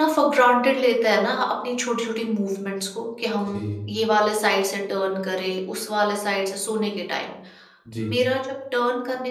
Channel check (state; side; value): identical; both; correlation 1.00